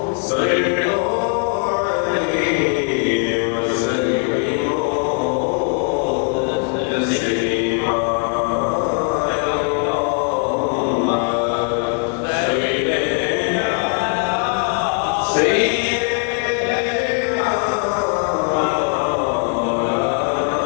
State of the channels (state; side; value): quieter; right; 40.0 dB